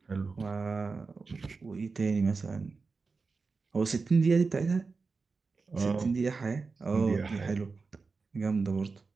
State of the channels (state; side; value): quieter; left; 4.4 dB